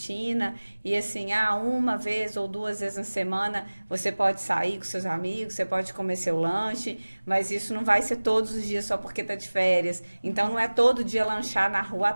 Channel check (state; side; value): inverted; both; correlation -1.00